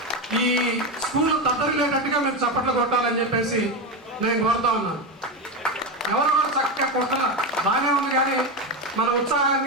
ఈ స్కూల్లో తద్దరిల్లేటట్టుగా మీరు చప్పట్లు కొట్టాలని చెప్పేసి నేను కోరుతా ఉన్నాను. ఎవరు కూడా చక్కగా కొట్టాల బాగానే ఉంది, కానీ మన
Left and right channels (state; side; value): normal; both; correlation 0.15